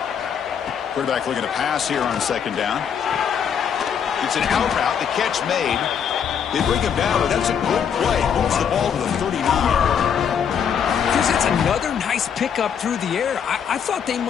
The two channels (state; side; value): quieter; right; 7.8 dB